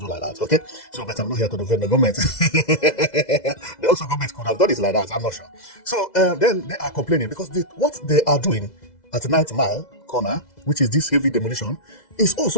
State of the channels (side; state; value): right; late; 2.0 ms